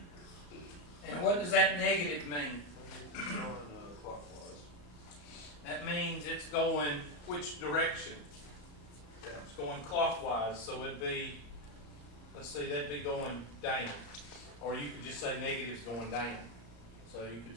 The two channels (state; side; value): late; right; 34 ms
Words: And what does that negative mean? It's going clockwise. That means it's going which direction? Down. It's going clockwise, so it'd be, let's see, that'd be going down. Or you could just say negative's going down. So you